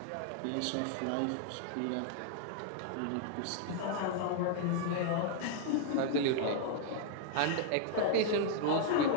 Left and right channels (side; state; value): both; different; correlation -0.01